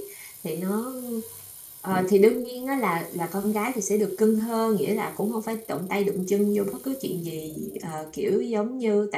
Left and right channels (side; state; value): both; identical; correlation 1.00